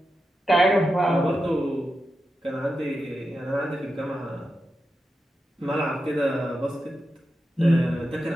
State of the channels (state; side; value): normal; both; correlation 0.89